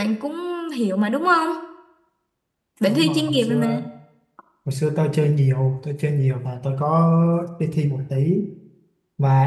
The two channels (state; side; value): identical; both; correlation 1.00